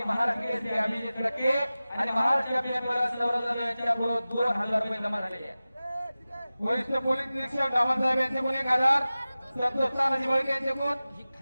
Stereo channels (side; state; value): both; inverted; correlation -0.96